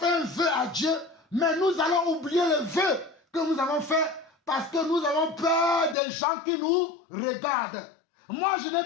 un vœu à Dieu, mais nous allons oublier le vœu que nous avons fait parce que nous avons peur des gens qui nous regardent. Moi, je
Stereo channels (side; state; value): right; drops out; at 6.0 s